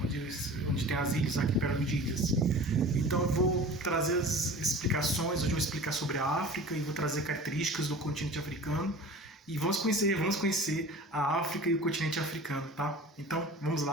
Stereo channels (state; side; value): normal; both; correlation 0.40